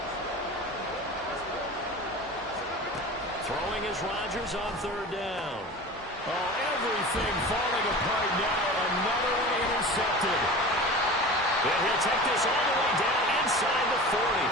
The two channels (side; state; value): both; normal; correlation 0.35